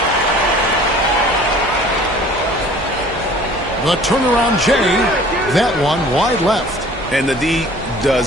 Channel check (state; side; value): normal; both; correlation 0.49